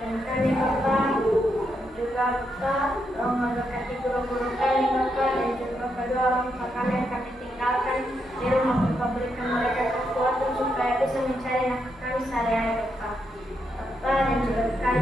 kami Bapak. Juga Bapak, Kau memberkati guru-guru kami Bapak, dan juga Bapak doa orang tua kami yang kami tinggalkan di rumah Bapak, berikan mereka kekuatan supaya bisa mencari nafkah kami sehari-hari Bapak. Bapak dan juga kami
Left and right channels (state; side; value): normal; both; correlation 0.81